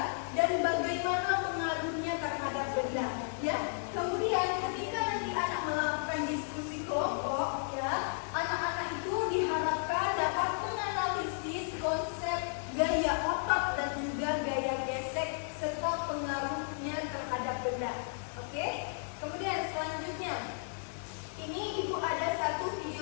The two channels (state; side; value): silent; right; digital silence